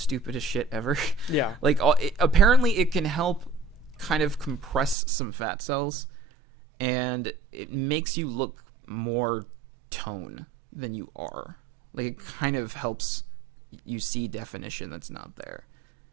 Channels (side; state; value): left; drops out; at 5.0 s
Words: shit ever. Yeah. Like, apparently it can help kind of compress some fat cells, and it makes you look more tone than you are. Like, it kind of helps you see definition that's not there.